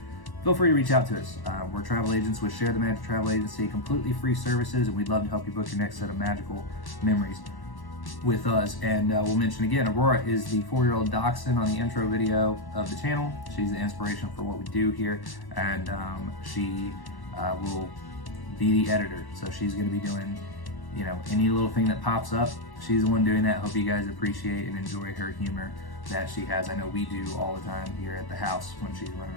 Feel free to reach out to us. We're travel agents with Share the Magic Travel Agency, completely free services, and we'd love to help you book your next set of magical memories with us. And we'll mention again, Aurora is the 4-year-old dachshund on the intro video of the channel. She's the inspiration for what we do here, and she will be the editor. So she's going to be doing, any little thing that pops up. She's the one doing that. Hope you guys appreciate and enjoy her humor that she has. I know we do all the time here at the house when she's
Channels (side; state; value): right; late; 1.1 ms